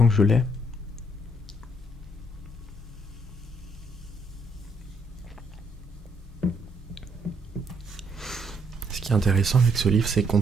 que je l'ai. Ce qui est intéressant avec ce livre, c'est qu'on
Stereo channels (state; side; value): normal; both; correlation 0.71